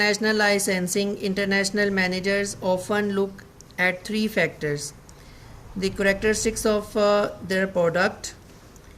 licensing, international managers often look at three factors: the characteristics of their product,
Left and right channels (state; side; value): identical; both; correlation 1.00